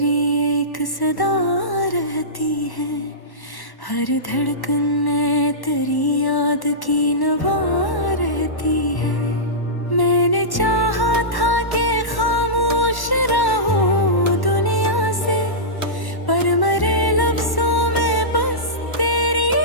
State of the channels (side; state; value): right; late; 1.1 ms